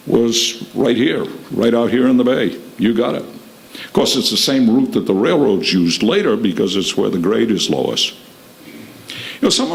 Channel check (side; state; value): both; identical; correlation 1.00